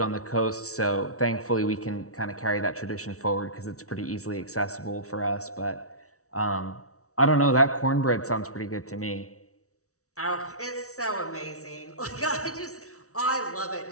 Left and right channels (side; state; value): right; late; 0.64 ms